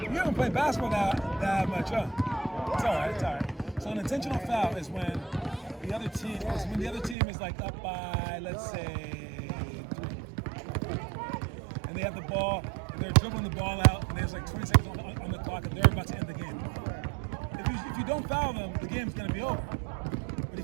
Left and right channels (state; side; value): drops out; left; at 7.2 s